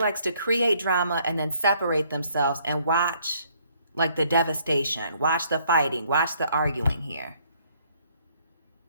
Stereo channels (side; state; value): both; inverted; correlation -0.65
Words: to create drama and then separate themselves and watch like the devastation, watch the fighting, watch the arguing here.